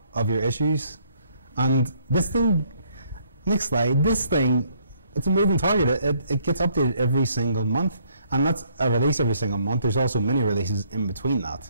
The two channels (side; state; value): both; inverted; correlation -0.66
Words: of your issues. And this thing, next slide, this thing, it's a moving target. It gets updated every single month. And that's a release every single month. There's also mini releases in between